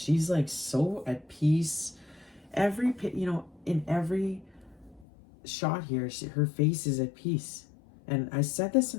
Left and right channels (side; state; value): right; drops out; at 5.1 s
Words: like so at peace. In every shot here, her face is at peace. And I said this